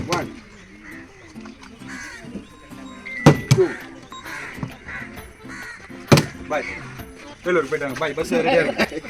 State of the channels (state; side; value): identical; both; correlation 1.00